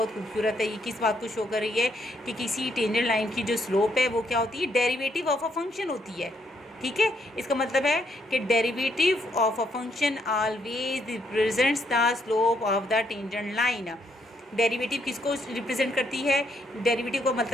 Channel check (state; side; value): normal; both; correlation 0.73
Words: खूबसूरत है। ये किस बात को शो कर रही है कि किसी टेंजेंट लाइन की जो स्लोप है वो क्या होती है, डेरिवेटिव ऑफ अ फंक्शन होती है। ठीक है, इसका मतलब है कि derivative of a function always represents the slope of the tangent line. Derivative किसको रिप्रेजेंट करती है, डेरिवेटिव का